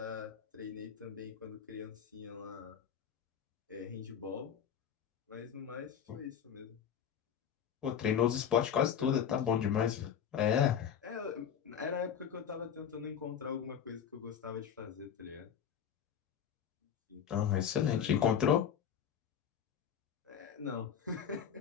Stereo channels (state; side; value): quieter; right; 8.4 dB